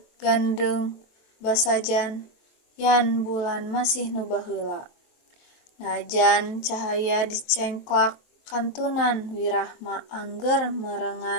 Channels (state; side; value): late; right; 23 ms